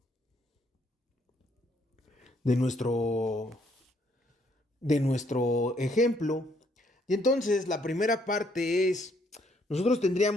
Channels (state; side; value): normal; both; correlation 0.69